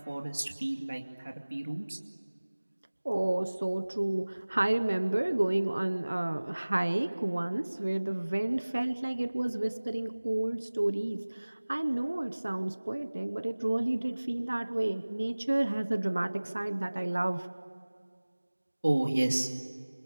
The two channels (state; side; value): inverted; both; correlation -1.00